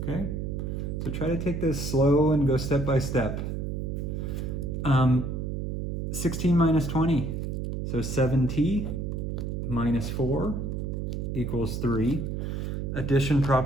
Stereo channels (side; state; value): right; noise; hum, 3 dB below the sound